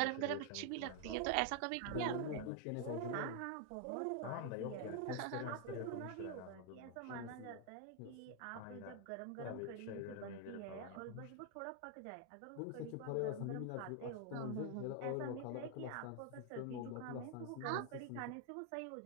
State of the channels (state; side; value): different; both; correlation 0.00